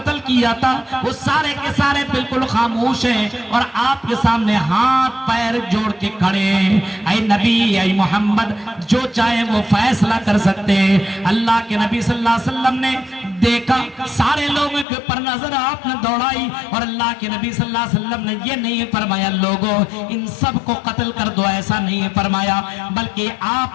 کیا تھا، وہ سارے کے سارے بالکل خاموش ہیں اور آپ کے سامنے ہاتھ پیر جوڑ کے کھڑے ہیں. اے نبی، اے محمد، جو چاہے وہ فیصلہ کر سکتے ہیں. اللہ کے نبی صلی اللہ علیہ وسلم نے دیکھا، سارے لوگوں کے پر نظر آپ نے دوڑائی اور اللہ کے نبی صلی اللہ علیہ وسلم نے یہ نہیں فرمایا لوگوں ان سب کو قتل کر دو، ایسا نہیں فرمایا، بلکہ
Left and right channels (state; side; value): drops out; right; at 14.9 s